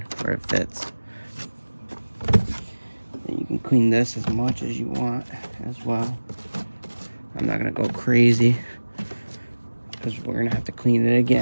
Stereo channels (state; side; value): inverted; both; correlation -1.00